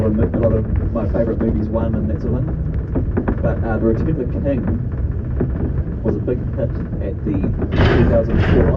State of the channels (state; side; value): identical; both; correlation 1.00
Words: of my favourite movies won and that sort of thing. But The Return of the King was a big hit at the 2004